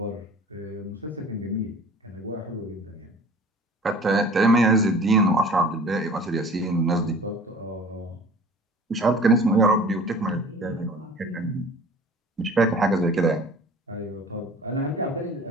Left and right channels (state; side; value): normal; both; correlation 0.45